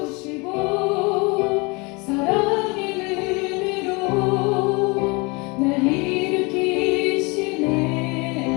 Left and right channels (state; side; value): quieter; right; 27.7 dB